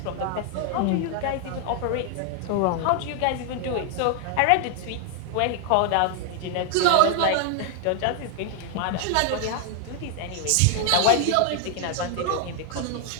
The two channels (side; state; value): both; different; correlation 0.00